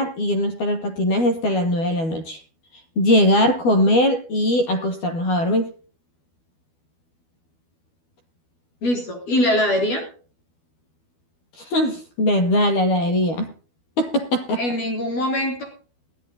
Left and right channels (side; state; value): right; late; 12 ms